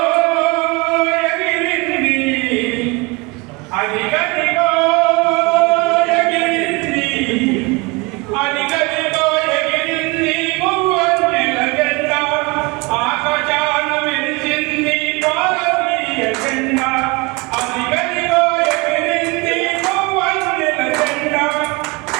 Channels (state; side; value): quieter; left; 26.7 dB